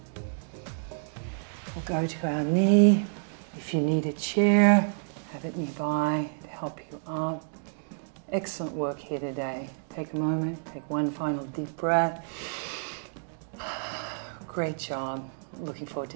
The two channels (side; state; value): left; silent; digital silence